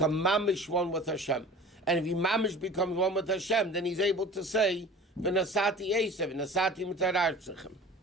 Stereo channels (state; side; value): normal; both; correlation 0.41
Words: mamish one with Hashem. And if he mamish becomes one with Hashem, then he's able to say, v'nasati esev, v'nasati mutarartzechem.